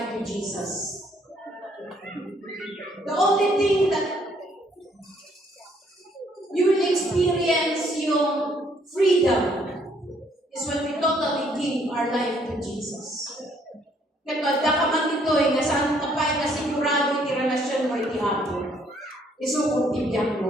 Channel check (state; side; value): normal; both; correlation 0.66